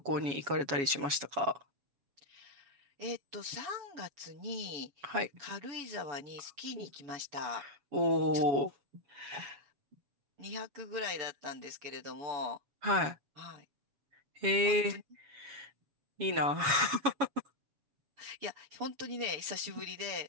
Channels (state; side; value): late; left; 7.2 ms